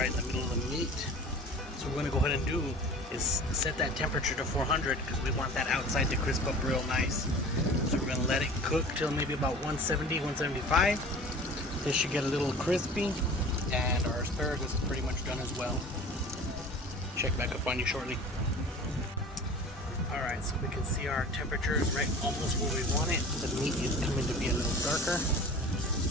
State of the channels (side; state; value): both; normal; correlation 0.41